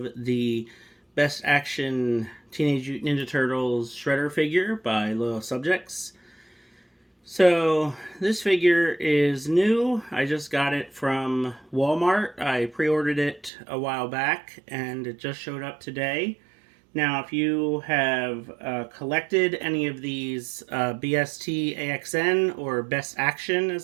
the Best Action Teenage Mutant Ninja Turtles Shredder figure by Loyal Subjects. So this figure is new. I just got it from Walmart. I pre-ordered it a while back and it just showed up today. Now if you have collected any of these BST AXN or Best Action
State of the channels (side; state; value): left; drops out; at 13.5 s